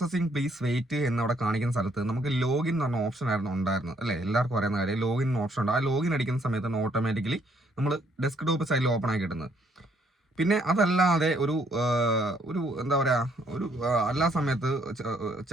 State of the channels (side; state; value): both; normal; correlation 0.68